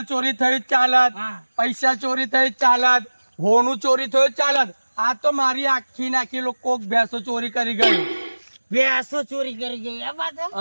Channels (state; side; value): inverted; both; correlation -1.00